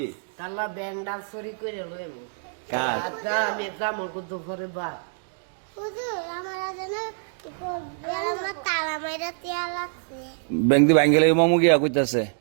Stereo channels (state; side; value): silent; left; digital silence